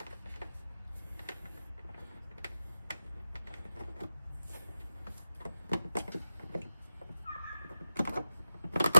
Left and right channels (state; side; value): inverted; both; correlation -0.92